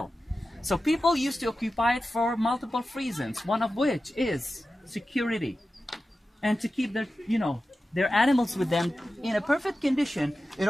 So people used to occupy it for multiple reasons, one of which is security. And to keep their, their animals with them in a perfect condition in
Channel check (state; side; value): normal; both; correlation 0.93